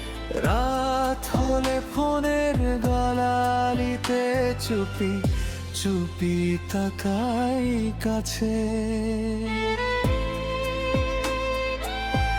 রাত হলে ফোনের গলালিতে চুপি চুপি তাকাই কাছে।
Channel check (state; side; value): identical; both; correlation 1.00